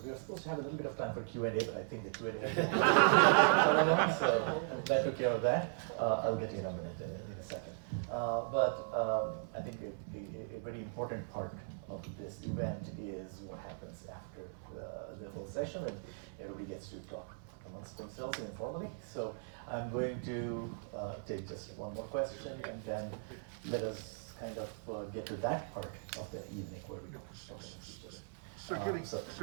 supposed to have a little bit of time for Q&A, but I think the Q&A is so that took care of that. I'll get you in a minute, in a second. But I think a very important part of this event is what happens after the whole session, and everybody gets to talk amongst themselves informally. So I'm going to take just one more question, and then let us kind of get to that part of the evening where we do speeches. So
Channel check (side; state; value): left; silent; 53 dB below the other